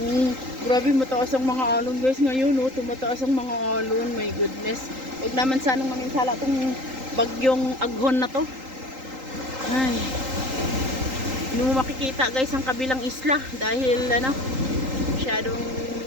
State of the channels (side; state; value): left; late; 3.8 ms